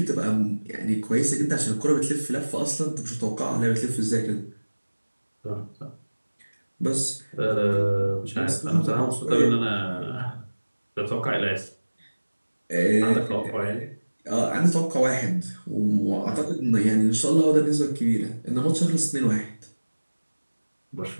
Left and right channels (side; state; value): both; inverted; correlation -1.00